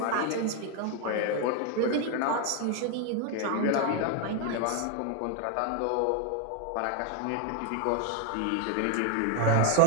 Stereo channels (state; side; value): different; both; correlation 0.01